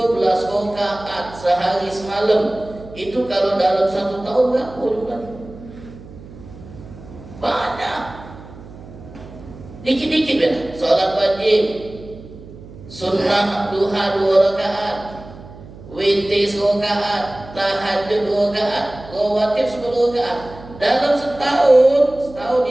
rakaat sehari semalam. Itu kalau dalam 1 tahun berapa jumlahnya? Banyak. Dikit-dikit ya. Solat wajib, sunnah duha 2 rakaat, witir 1 rakaat, tahajud 2 rakaat, rawatib 10 rakaat. Dalam setahun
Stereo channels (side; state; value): right; noise; hum, 17 dB below the sound